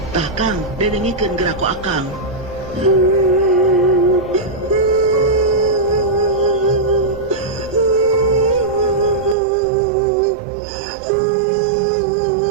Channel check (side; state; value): left; drops out; at 9.3 s